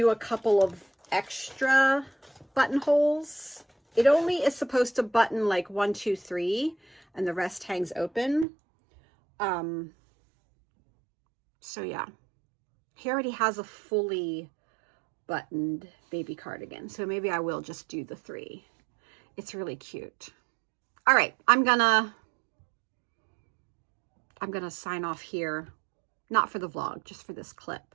a couple of extra buttonholes. It only is supposed to button like 1, 2, 3, and the rest hangs open. So yeah, he already has a fully buttoned baby cardigan. So maybe I will just do the 3. It's really cute. All right, I'm gonna sign off here not for the vlog, just for this clip.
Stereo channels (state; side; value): drops out; left; at 8.5 s